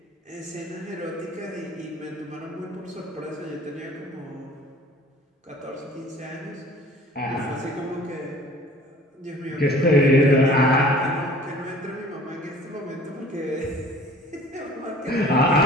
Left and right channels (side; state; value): both; normal; correlation 0.49